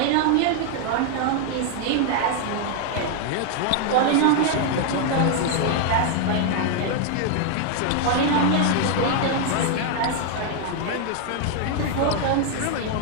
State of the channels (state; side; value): different; both; correlation 0.00